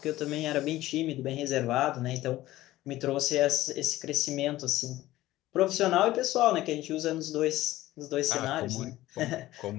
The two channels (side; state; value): right; quieter; 16.1 dB